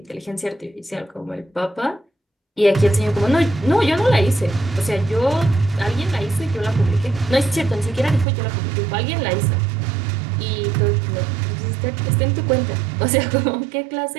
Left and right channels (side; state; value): left; drops out; at 8.2 s